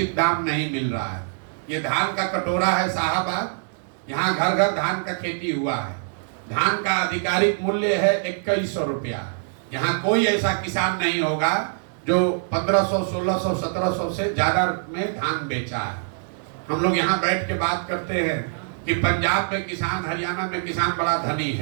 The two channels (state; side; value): silent; left; digital silence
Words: दाम नहीं मिल रहा है। ये धान का कटोरा है साहबाद, यहाँ घर घर धान का खेती हुआ है। धान का आधिकारिक मूल्य है 2100 रुपया। यहाँ कोई ऐसा किसान नहीं होगा जो 1500, 1600, 1700 से ज्यादा में धान बेचा है। हम लोग यहाँ बैठ के बात करते हैं कि पंजाब में किसान, हरियाणा में किसान बड़ा धनी